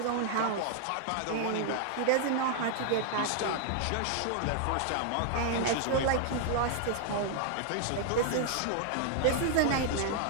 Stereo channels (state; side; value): different; both; correlation 0.00